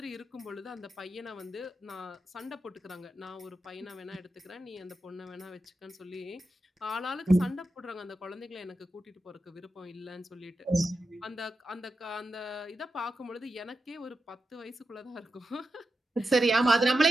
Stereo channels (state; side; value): normal; both; correlation 0.89